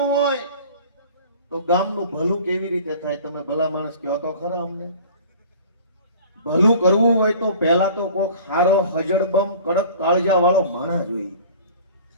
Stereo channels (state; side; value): inverted; both; correlation -0.44